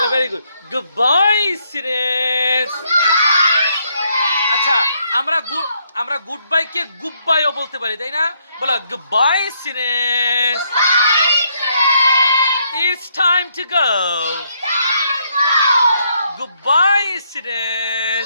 very good. Goodbye, students. আচ্ছা, আমরা good bye কে good বাইও বলতে পারি, তাই না? বলো goodbye students. It's time to go. Goodbye,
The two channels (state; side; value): inverted; both; correlation -0.73